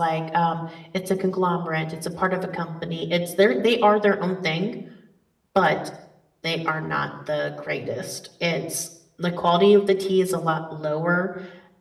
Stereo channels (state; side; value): identical; both; correlation 1.00